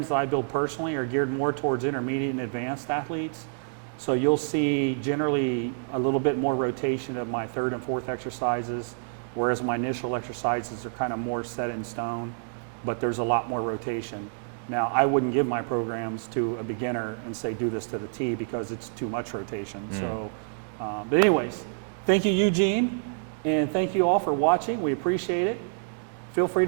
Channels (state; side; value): silent; left; digital silence